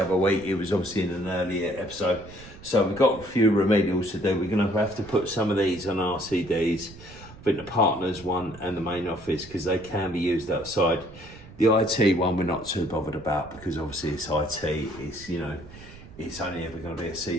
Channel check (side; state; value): right; noise; rumble, 18 dB below the sound